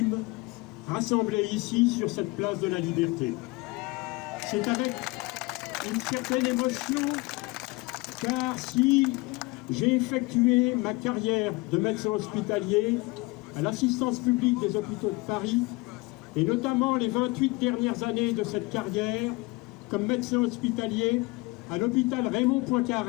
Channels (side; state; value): right; quieter; 24.2 dB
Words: rassemblés ici sur cette place de la Liberté. C'est avec une certaine émotion, car si j'ai effectué ma carrière de médecin hospitalier à l'assistance publique des hôpitaux de Paris, et notamment les 28 dernières années de cette carrière comme médecin hospitalier à l'hôpital Raymond